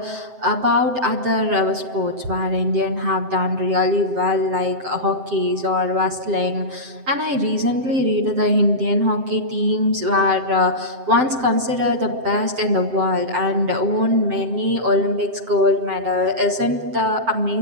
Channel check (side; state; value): left; late; 7.7 ms